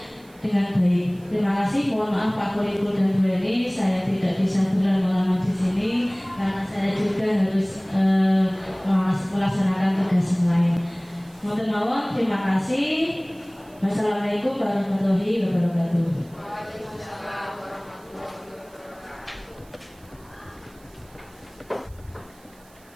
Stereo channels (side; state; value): right; noise; hiss, 28 dB below the sound